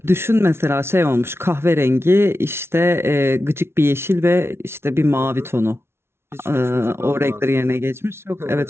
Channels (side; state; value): left; late; 0.12 ms